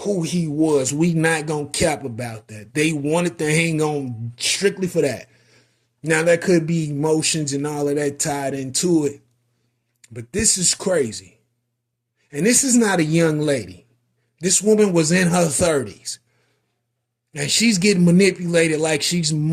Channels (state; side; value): identical; both; correlation 1.00